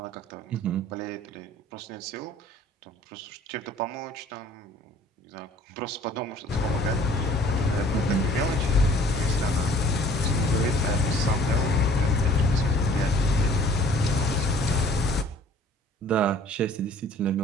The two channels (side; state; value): both; normal; correlation 0.54